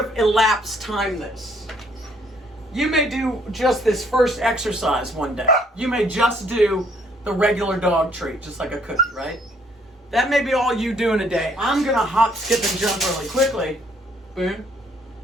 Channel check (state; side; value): normal; both; correlation 0.65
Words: elapse time this. You may do just this first exercise one day. You may just do the regular dog treat, just like a cookie, right? That may be all you do in a day. I'm going to hop, skip, and jump really quickly. Boom.